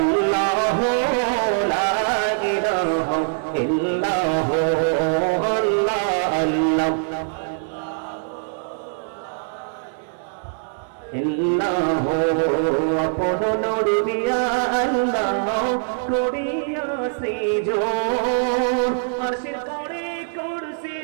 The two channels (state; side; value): silent; left; 60 dB below the other